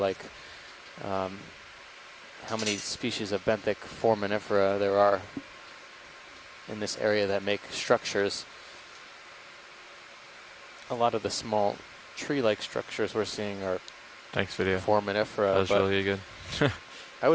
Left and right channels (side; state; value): both; identical; correlation 1.00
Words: how many species of benthic foraminifera there are in this area that make structures. A lot of the small tree-like structures we're seeing are foraminifera. That was really good. I